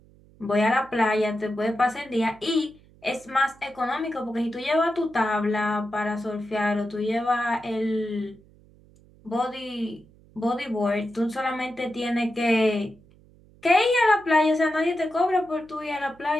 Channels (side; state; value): right; noise; hum, 27 dB below the sound